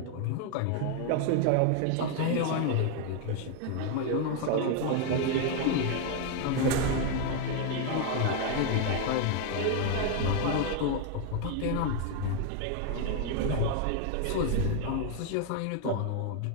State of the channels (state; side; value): different; both; correlation 0.00